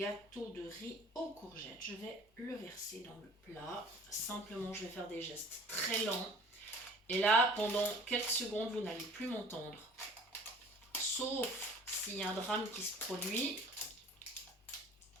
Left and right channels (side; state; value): both; normal; correlation 0.48